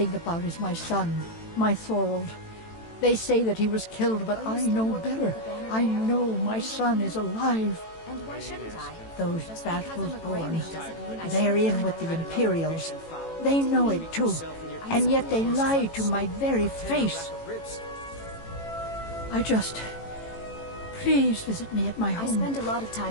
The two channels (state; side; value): late; right; 18 ms